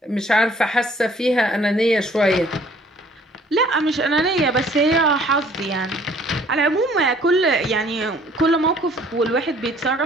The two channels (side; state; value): both; normal; correlation 0.57